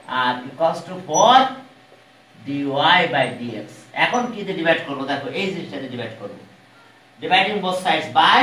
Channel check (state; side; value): identical; both; correlation 1.00